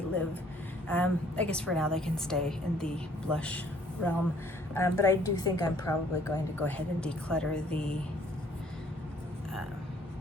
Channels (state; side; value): normal; both; correlation 0.60